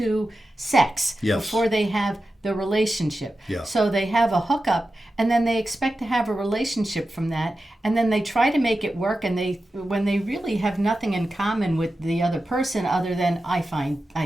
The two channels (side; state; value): both; normal; correlation 0.92